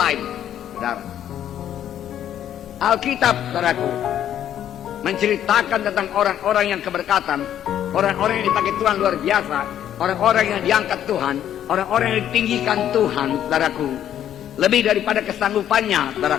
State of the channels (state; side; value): quieter; right; 10.6 dB